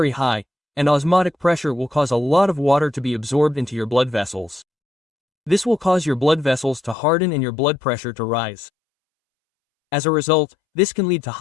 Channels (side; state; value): right; drops out; at 7.0 s